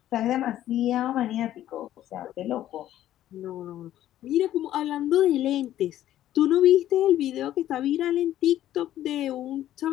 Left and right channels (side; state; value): right; quieter; 12.6 dB